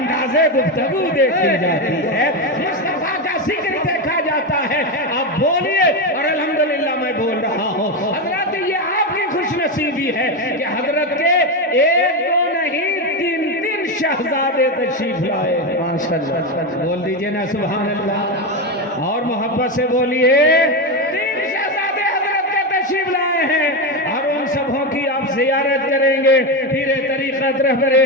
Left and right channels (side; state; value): both; normal; correlation 0.12